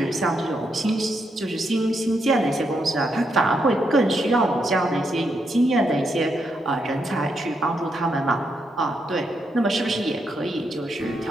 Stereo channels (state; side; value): normal; both; correlation 0.80